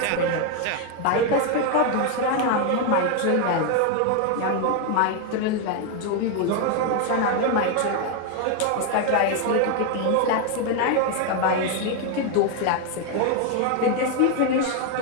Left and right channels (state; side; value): different; both; correlation 0.01